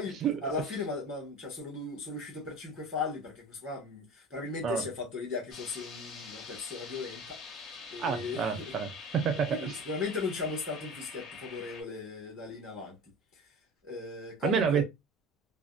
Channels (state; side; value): normal; both; correlation 0.36